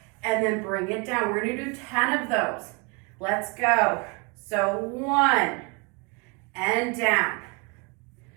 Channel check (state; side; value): quieter; left; 30.6 dB